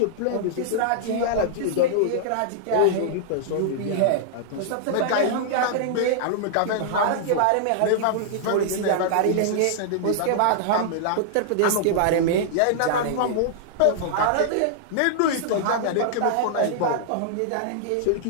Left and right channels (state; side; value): different; both; correlation -0.01